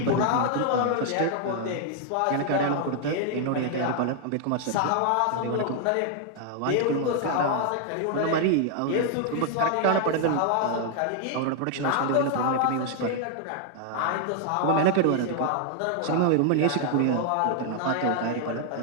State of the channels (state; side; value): different; both; correlation 0.00